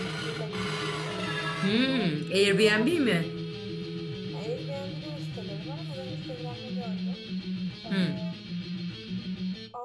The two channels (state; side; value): identical; both; correlation 1.00